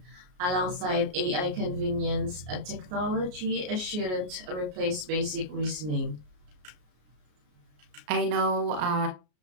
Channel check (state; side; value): late; left; 33 ms